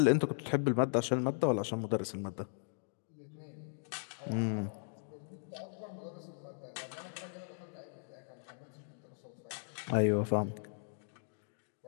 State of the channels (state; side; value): silent; right; digital silence